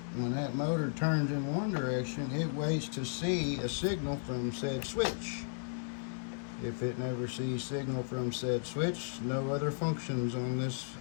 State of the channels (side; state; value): right; silent; digital silence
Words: when that motor turns in one direction, it waits to see a signal from said switch. If it never sees signal from said switch, no other functions on this